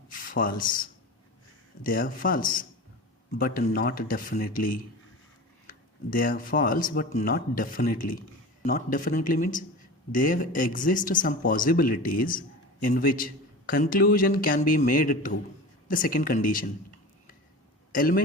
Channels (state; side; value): normal; both; correlation 0.32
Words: false. They are false, but not definitely. They are false, but not definitely. Not definitely means there exist some possibilities in which conclusion can be made true. The second condition,